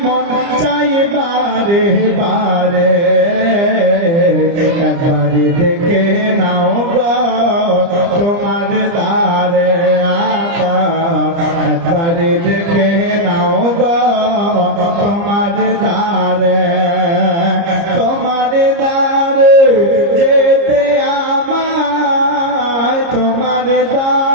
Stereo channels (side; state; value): left; late; 30 ms